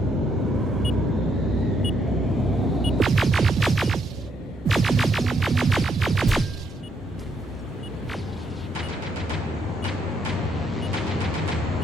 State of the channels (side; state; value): both; normal; correlation 0.73